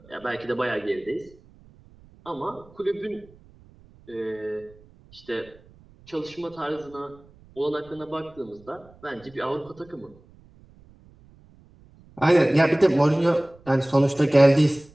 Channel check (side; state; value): right; noise; rumble, 26 dB below the sound